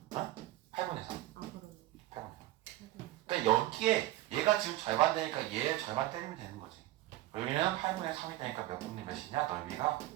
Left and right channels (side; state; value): left; quieter; 16.1 dB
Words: 3. 8분의 3. 아 그러네. 8분의 3. 그러니까 여기에 얘가 지금 절반 되니까 얘 절반 때리면 되는 거지. 여기는 8분의 3이 되니까 몇 분의 몇이냐? 넓이가